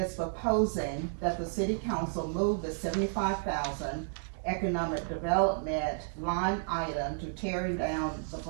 proposing that the City Council move the $75,000 economic development line item to tearing down the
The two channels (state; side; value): silent; left; digital silence